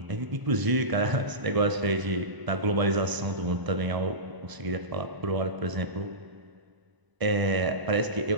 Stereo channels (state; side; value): late; left; 1.0 ms